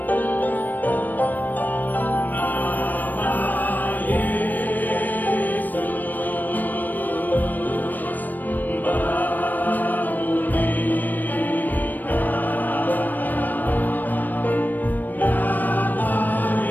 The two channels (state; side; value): late; right; 0.088 ms